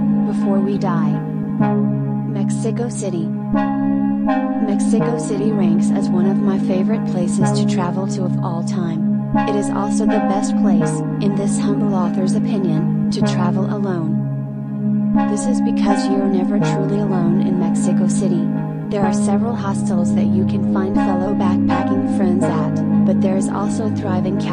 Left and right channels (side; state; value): both; identical; correlation 1.00